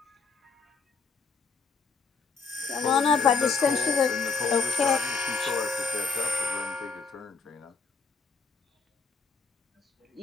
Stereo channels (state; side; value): quieter; right; 4.9 dB